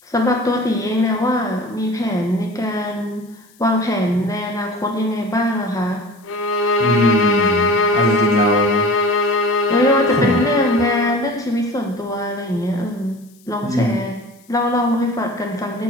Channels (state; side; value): noise; left; hiss, 30 dB below the sound